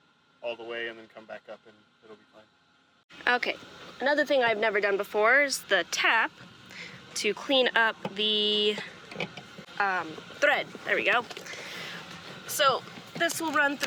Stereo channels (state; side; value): identical; both; correlation 1.00